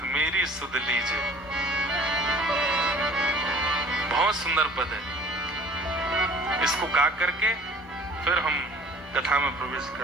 मेरी सुध लीजिए। बहुत सुंदर पद है। इसको गा करके फिर हम कथा में प्रवेश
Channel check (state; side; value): normal; both; correlation 0.48